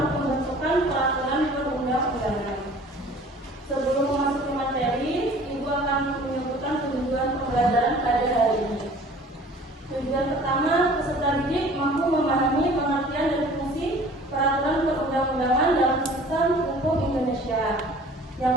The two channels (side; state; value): both; normal; correlation 0.48